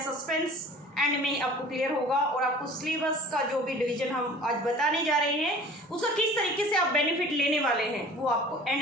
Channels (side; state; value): both; normal; correlation 0.45